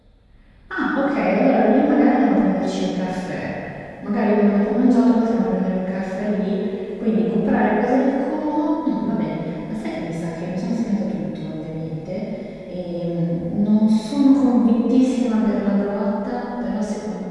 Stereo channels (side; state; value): both; identical; correlation 1.00